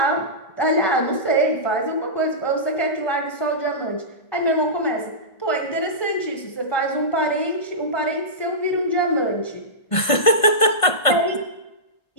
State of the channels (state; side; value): late; right; 1.5 ms